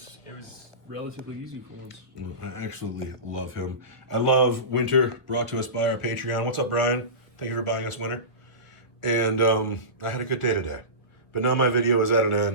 was relatively easy for once. Well, I absolutely love him. I love Winter, brought to us by our Patreon. What's up, Brian? Thank you for buying us Winter. And I had a good day today. But now my video is at an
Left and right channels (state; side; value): late; right; 1.8 ms